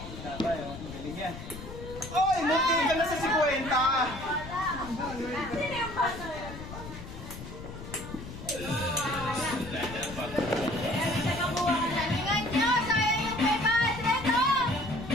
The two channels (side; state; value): left; noise; rumble, 11 dB below the sound